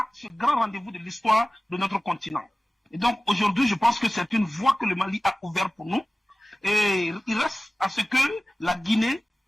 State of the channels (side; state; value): both; normal; correlation 0.97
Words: ce grand rendez-vous de l'histoire de notre continent. Et donc aujourd'hui, je pense que c'est une voie que le Mali a ouverte pour nous. Et il reste à ce que la Guinée,